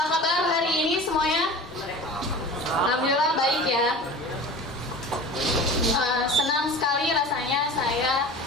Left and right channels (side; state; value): both; normal; correlation 0.36